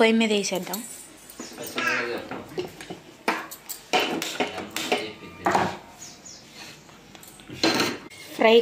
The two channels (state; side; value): identical; both; correlation 1.00